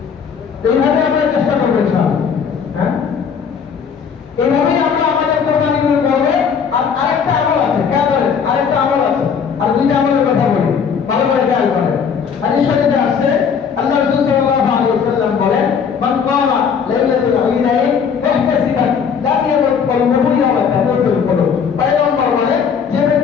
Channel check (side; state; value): right; quieter; 6.7 dB